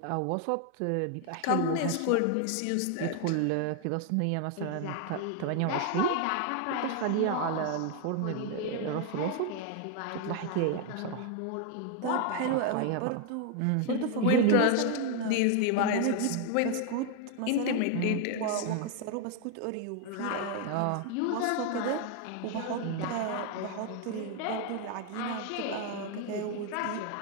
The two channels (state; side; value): different; both; correlation 0.01